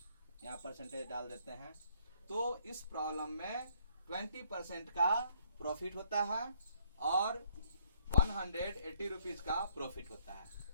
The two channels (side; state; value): both; inverted; correlation -0.66